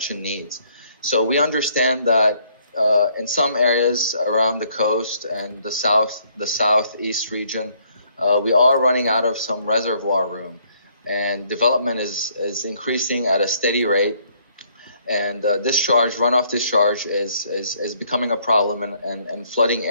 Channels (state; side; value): inverted; both; correlation -0.67